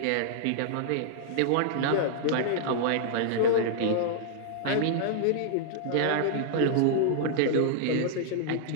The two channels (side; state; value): both; different; correlation -0.01